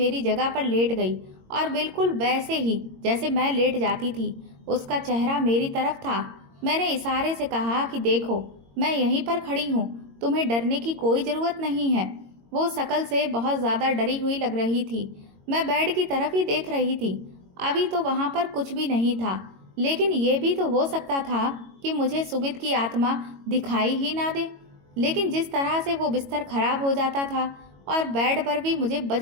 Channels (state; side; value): late; left; 22 ms